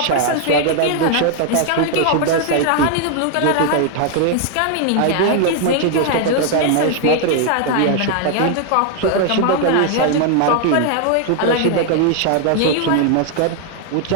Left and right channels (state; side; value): different; both; correlation 0.00